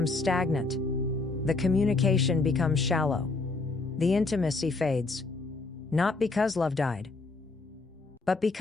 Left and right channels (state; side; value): quieter; right; 3.6 dB